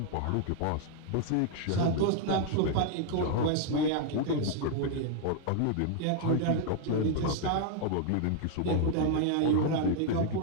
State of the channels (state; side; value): different; both; correlation 0.00